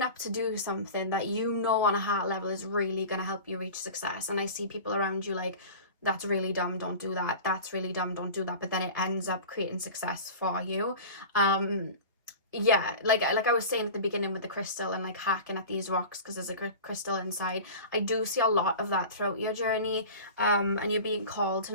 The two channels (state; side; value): inverted; both; correlation -0.34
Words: up to do something that you know on a heart level is really going to help you reach success. And I see people around you like, that's really dumb, don't do that. That's really dumb, don't do that. But then it ends up creating success for you. Yeah, like I was saying at the beginning with the crystal and like hacking at these rocks because there's a crystal inside. I do see a lot of that throughout your journey, and you're being called to